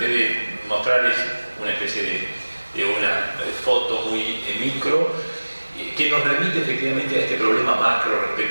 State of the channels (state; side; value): inverted; both; correlation -1.00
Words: de mostrar es una especie de una foto muy micro, que nos remite efectivamente a este problema macro